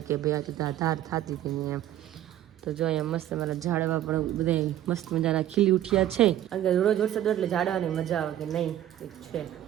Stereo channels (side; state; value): left; quieter; 12.3 dB